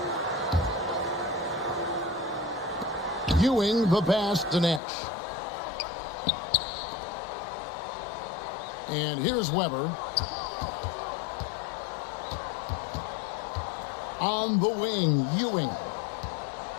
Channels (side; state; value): right; drops out; at 4.8 s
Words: Ewing the pass to Nash. And here's Weber. On the wing, Ewing.